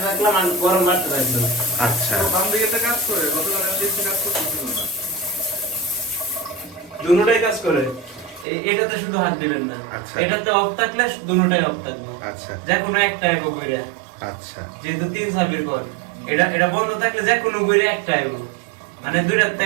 রাখলাম, আর গরম বাড়তে রাখলাম। আচ্ছা, বাম দিকেটা কাজ করে, গতকাল আমি দেখছি কাজ করতেছিল না। দুটোটাই কাজ করে। এটাতে শুধু হাত দিবেন না। আচ্ছা। এটাতে অফ থাকলে দুটোটাই অফ থাকবে। আচ্ছা, যে কোনো একটা এগো ঘুরে। আচ্ছা, যেহেতু 3 চাবির ঘর, এটা বন্ধ থাকলে যে কোনো ঘুরে একটা এগো, মানে দুইটাতে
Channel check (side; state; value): left; drops out; at 8.5 s